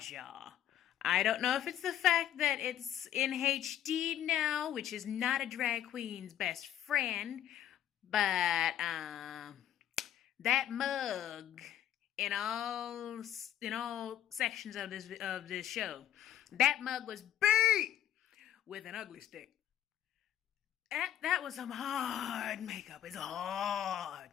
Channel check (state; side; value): quieter; right; 11.3 dB